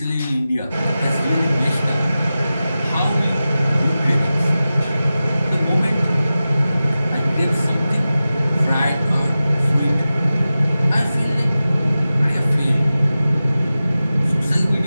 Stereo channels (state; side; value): inverted; both; correlation -0.94